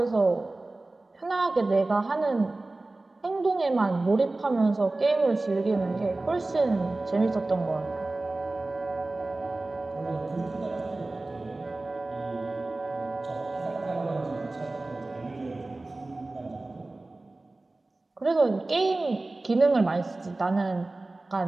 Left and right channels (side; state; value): left; quieter; 3.0 dB